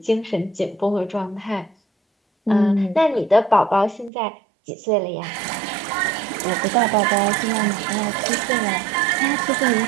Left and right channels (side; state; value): left; drops out; at 4.1 s